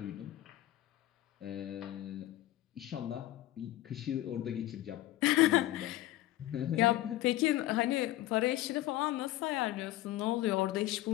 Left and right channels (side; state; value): right; quieter; 15.4 dB